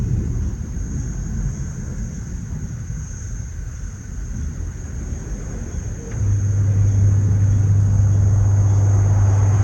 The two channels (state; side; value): identical; both; correlation 1.00